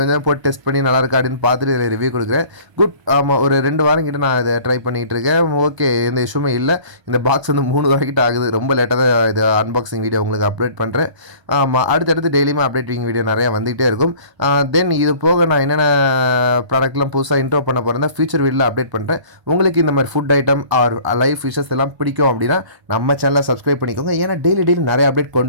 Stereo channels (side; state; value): left; late; 1.3 ms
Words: கொஞ்சம் போட்டு டெஸ்ட் பண்ணி நல்லா இருக்கா அப்படின்னு பார்த்துட்டு இதில் ரிவ்யூ கொடுக்குறேன். குட். ஆமாம், ஒரு 2 வாரம் கிட்ட நான் இதை ட்ரை பண்ணிகிட்டு இருக்கேன். ஓகே, எந்த இஷ்யூமே இல்லை. இந்த பாக்ஸ் வந்து 3 வாரம் கிட்ட ஆகுது. ரொம்ப லேட்டாக தான் இது அன்பாக்சிங் வீடியோ உங்களுக்கு அப்டேட் பண்ணுறேன். ஆமாம், அடுத்தடுத்து டெய்லியுமே அப்டேட்டிங் வீடியோ நிறையா வந்துகிட்டே இருக்கும். தென் இது போக நான் என்னென்ன ப்ராடக்ட்லாம் புதுசாக இன்ட்ரோ பண்ண போகிறேன் ஃபியூச்சர் வீடியோவில் அப்டேட் பண்ணுறேன். உங்களுக்கு இந்த மாதிரி food item or live fishes எல்லாம் பிடிக்கும் அப்படின்னா நம்ம சேனலை சப்ஸ்கிரைப் பண்ணிக்கோங்க. ஏன்னா டெய்லி நிறைய அப்டேட்